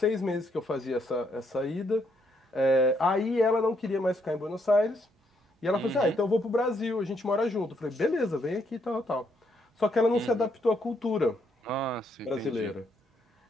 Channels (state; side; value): normal; both; correlation 0.74